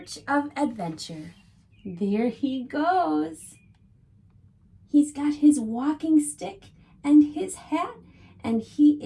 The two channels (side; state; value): both; identical; correlation 1.00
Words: of adventure. There he goes. He's got his walking stick and his hat, and he